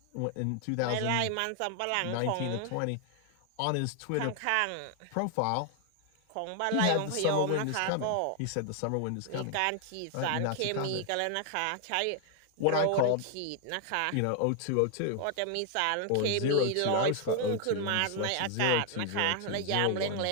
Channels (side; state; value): both; different; correlation 0.00